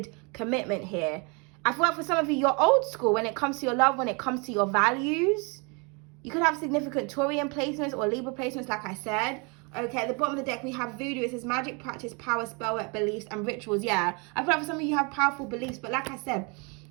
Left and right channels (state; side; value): quieter; left; 31.8 dB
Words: commitment here. I feel like for some of you, you're old school when it comes to your love, when it comes to your values. You could have significant Taurian placements or Libra placements, like I said. Okay, at the bottom of the deck, we have voodoo. It says magic, practice, power, spell work, beliefs, and rituals. Yeah, I feel like for some of you have powerful beliefs, but like I said,